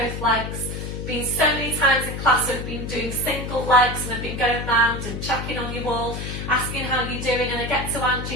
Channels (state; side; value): noise; left; hum, 6 dB below the sound